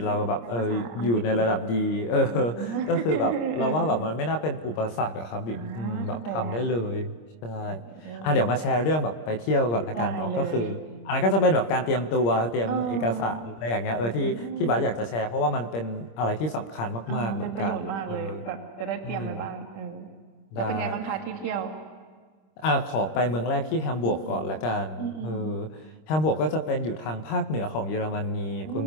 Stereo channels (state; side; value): late; right; 26 ms